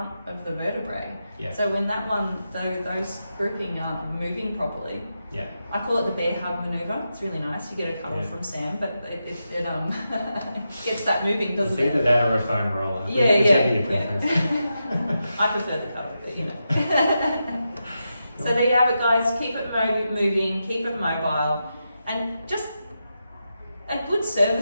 of the vertebrae. So when that one, those grouping aren't moving properly, I call it the bear hug maneuver. It's really nice. You get a cuddle from Sam, but it gets that moving, doesn't it? It's either that or a foam roller. Your preference. I prefer the cuddle, but So there you have it, guys. Keep it moving, keep it mobile, and just a good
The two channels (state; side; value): inverted; both; correlation -0.88